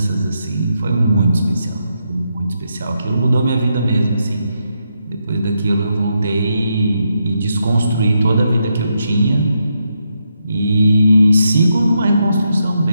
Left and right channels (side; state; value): both; inverted; correlation -0.81